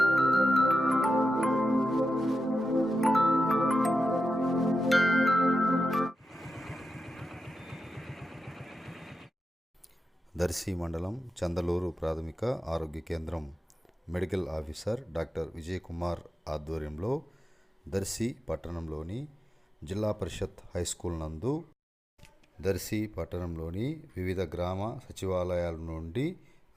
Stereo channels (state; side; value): normal; both; correlation 0.90